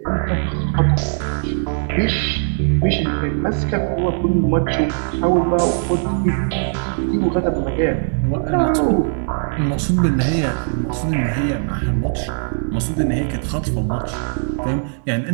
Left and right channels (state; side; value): silent; left; digital silence